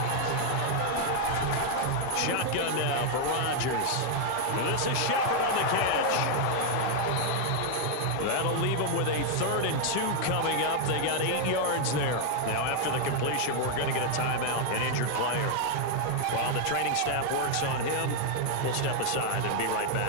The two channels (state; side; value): different; both; correlation 0.00